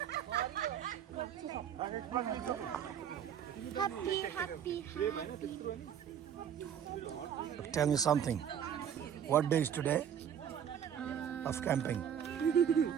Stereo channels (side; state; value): left; quieter; 8.9 dB